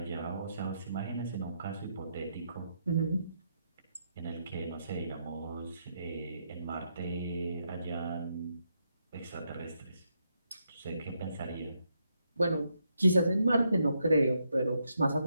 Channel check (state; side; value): inverted; both; correlation -0.79